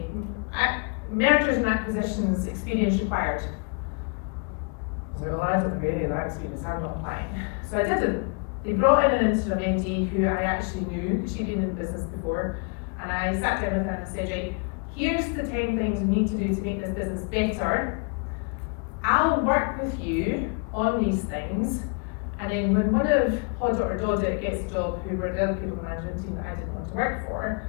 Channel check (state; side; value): quieter; right; 36.2 dB